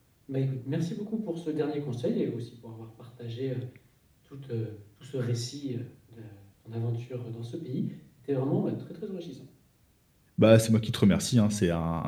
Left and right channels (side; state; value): both; identical; correlation 1.00